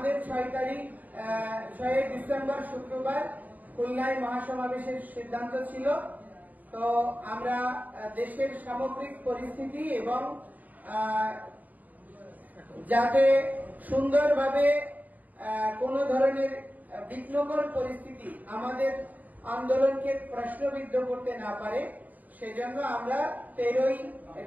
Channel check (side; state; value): left; late; 0.079 ms